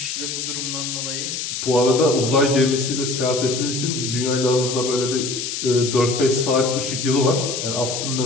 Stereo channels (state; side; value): noise; left; hiss, 4 dB below the sound